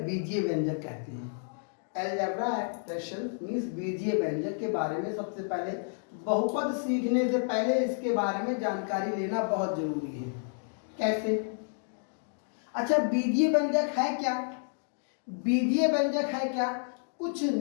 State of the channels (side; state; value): right; silent; digital silence